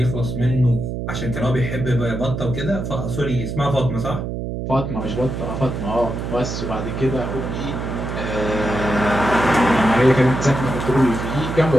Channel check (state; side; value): noise; right; hum, 5 dB below the sound